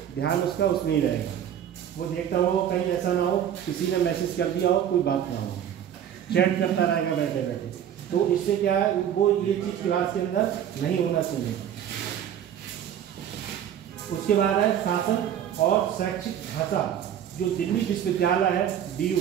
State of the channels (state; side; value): quieter; left; 9.8 dB